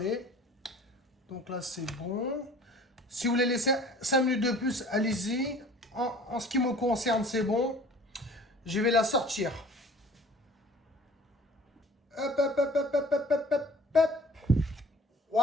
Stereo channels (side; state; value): both; normal; correlation 0.49